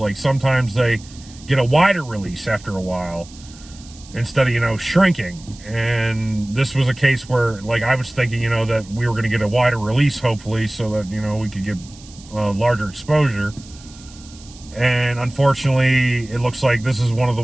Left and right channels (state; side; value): noise; right; hiss, 21 dB below the sound